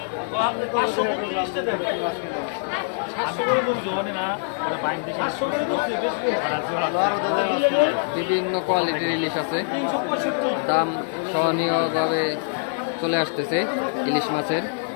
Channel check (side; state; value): right; silent; digital silence